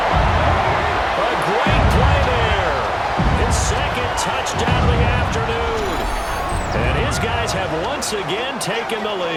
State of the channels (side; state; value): both; identical; correlation 1.00